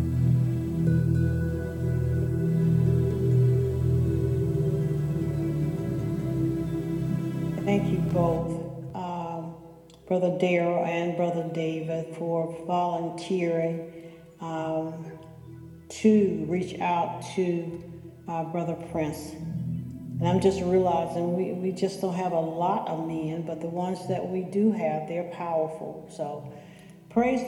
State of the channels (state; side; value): identical; both; correlation 1.00